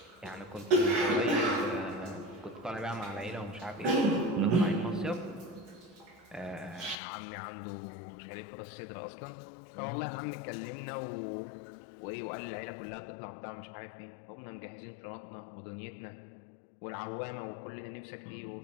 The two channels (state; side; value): drops out; right; at 7.0 s